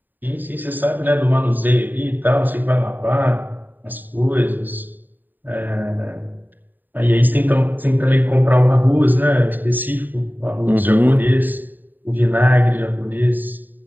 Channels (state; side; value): late; left; 0.090 ms